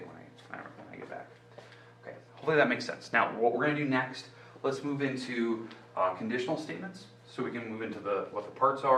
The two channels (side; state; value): both; identical; correlation 1.00